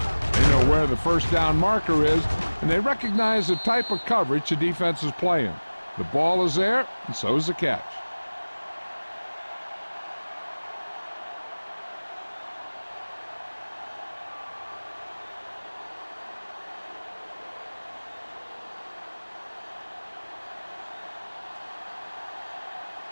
know where the first down marker is, and they recognize the type of coverage the defense is playing. The ball is there, and so is the catch.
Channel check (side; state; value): both; inverted; correlation -1.00